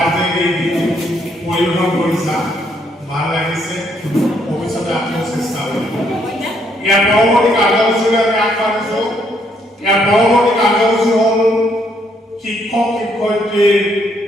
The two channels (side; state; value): both; normal; correlation 0.71